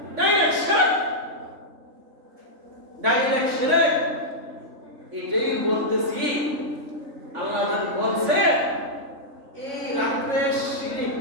ডাইরেক্ট শিরক এটাই বলতেছি আল্লাহ যখন বলছে এই রাত্রে শিরিক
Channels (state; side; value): late; left; 3.5 ms